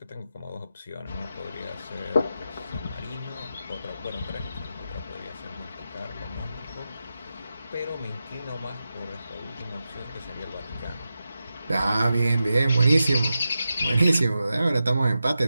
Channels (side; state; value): both; inverted; correlation -0.90